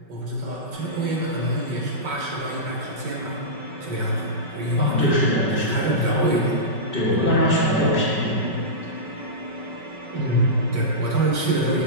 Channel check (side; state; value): left; late; 5.3 ms